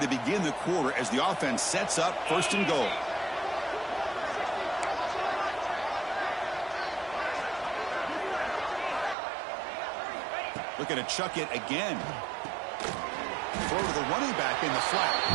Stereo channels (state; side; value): drops out; left; at 9.2 s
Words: begin the quarter as the offense sets up first and goal. Looking to chuck it again. Throw to the running back in the flat.